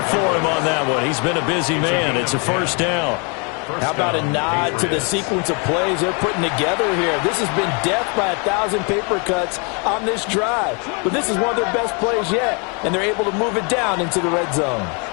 for him on that one. He's been a busy man. It's a first down. How about a nod to the sequence of plays they're putting together here? This has been death by 1,000 paper cuts on this drive. But this is one of their best plays yet, and they're able to move it down into the red zone.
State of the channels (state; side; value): quieter; right; 34.3 dB